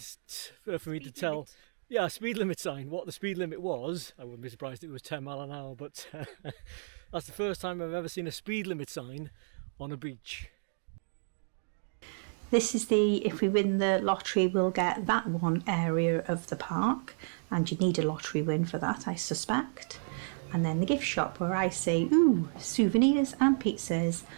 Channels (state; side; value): silent; left; digital silence